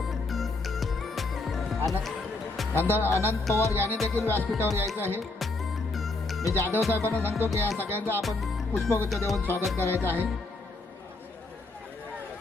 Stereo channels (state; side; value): quieter; right; 3.3 dB